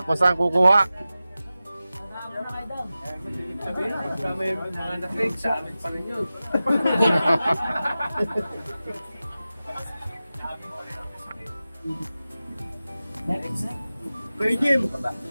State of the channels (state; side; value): inverted; both; correlation -0.95